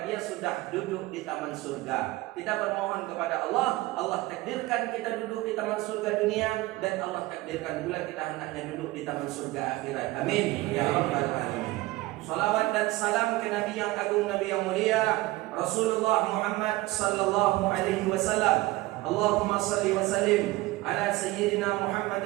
dia sudah duduk di taman surga. Kita bermohon kepada Allah, Allah takdirkan kita duduk di taman surga dunia, dan Allah takdirkan pula kita hendaknya duduk di taman surga akhirat. Amin ya rabbal alamin. Salawat dan salam ke Nabi yang agung, Nabi yang mulia, Rasulullah Muhammad sallallahu alaihi wasallam. Allahumma salli wa sallim ala sayyidina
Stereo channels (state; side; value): quieter; left; 19.4 dB